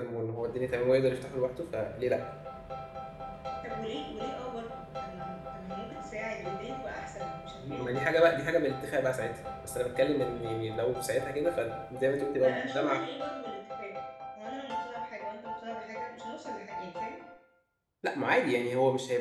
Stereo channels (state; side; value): identical; both; correlation 1.00